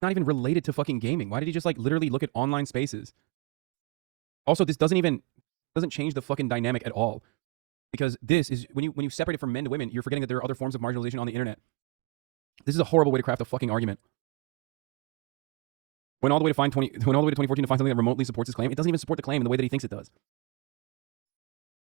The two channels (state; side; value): quieter; left; 26.2 dB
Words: not even related to fucking gaming. Why did he just like literally look at online spaces? Also, this doesn't change the fucking dynamic at all. Because this is, when you separate it from men to women, you're forgetting that there are other forms of marginalization on the internet. This is a horrible way to craft a fucking argument. Went all the way to 2014 to find something that remotely supports his claim. It doesn't even support the claim in the way that he thinks it does.